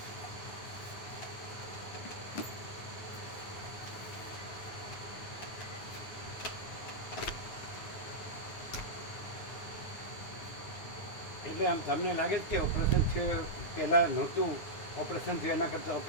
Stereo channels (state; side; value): late; right; 9.8 ms